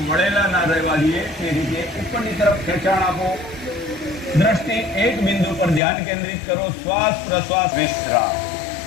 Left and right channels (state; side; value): drops out; right; at 5.8 s